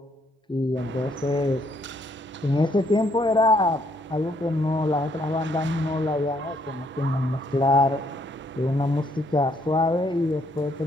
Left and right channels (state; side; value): normal; both; correlation 0.70